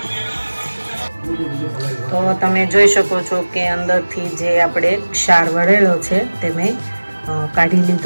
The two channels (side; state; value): both; inverted; correlation -1.00